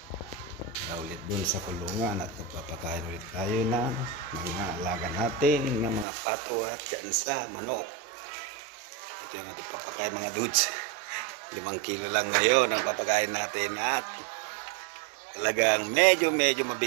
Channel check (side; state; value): left; drops out; at 6.1 s